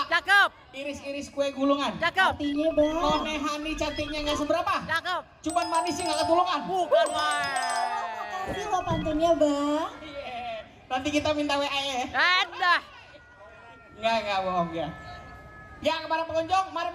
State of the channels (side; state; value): both; identical; correlation 1.00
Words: Cakep. Iris-iris kue gulungan. Cakep. Artinya bang. None Hani cantiknya nggak seberapa. Cakep. Cuman manisnya nggak ketulungan. Bukan, Bang. Makasih lo pantunnya bang. Iya. Nanti kita minta WA ya. Dah. Enggak bohong ya. Ya kepada pengunjung, mari